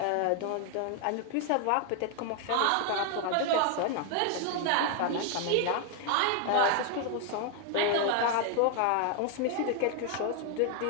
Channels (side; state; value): both; different; correlation 0.00